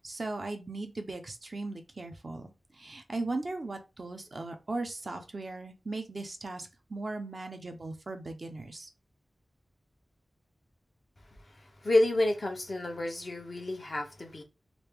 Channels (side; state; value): both; normal; correlation 0.94